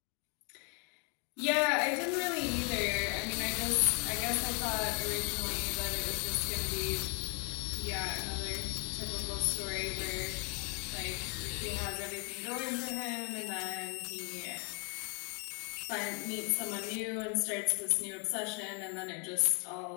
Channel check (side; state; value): right; quieter; 36.5 dB